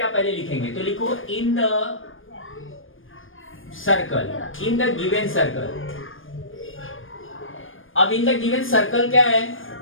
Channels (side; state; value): right; late; 0.59 ms